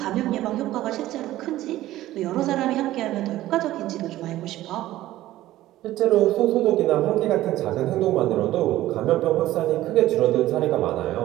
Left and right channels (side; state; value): left; quieter; 15.1 dB